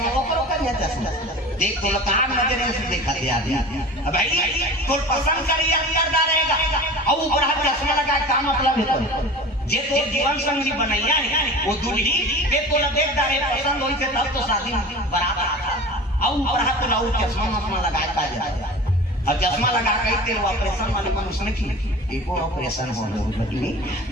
चश्मा देख तो लकान नजर से देखा दिया अब भाई तो पसंद करिए करदा रहेगा और ऊपर हाथ चश्मा लगा का मतलब है जे तो जीवन संगी बनैया है वो दूल्ही के तो देख दारे पसंद होई से तब तो शादी बराबर आता और ऊपर हाथ लाऊ चश्मा लगा का जाए अब चश्मा लगा के तेल ऑपरेशन वाले मनुष्य ने की एक और ऑपरेशन हो लगी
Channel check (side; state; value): both; normal; correlation 0.37